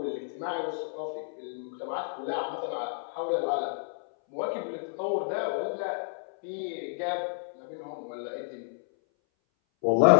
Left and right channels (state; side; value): silent; right; 58 dB below the other